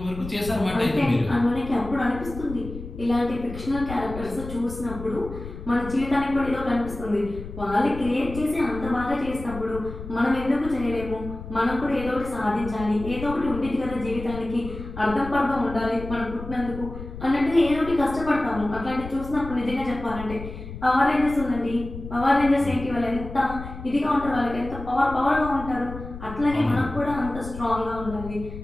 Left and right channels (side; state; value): left; noise; rumble, 11 dB below the sound